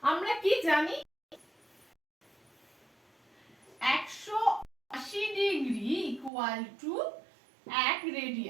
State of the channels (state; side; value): drops out; left; at 6.3 s